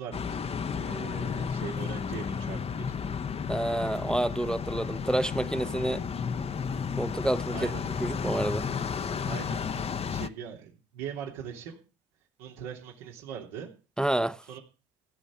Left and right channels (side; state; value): both; normal; correlation 0.75